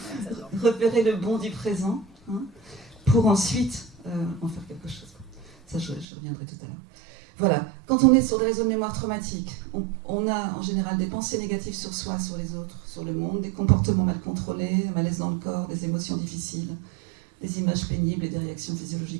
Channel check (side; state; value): left; drops out; at 6.1 s